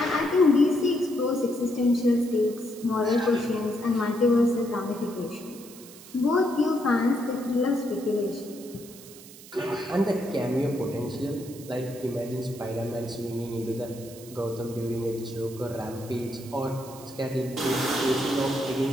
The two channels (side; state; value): right; noise; hiss, 18 dB below the sound